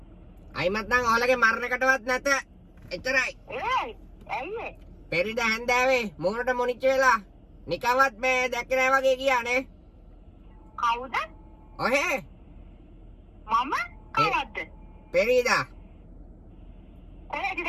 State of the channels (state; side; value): identical; both; correlation 1.00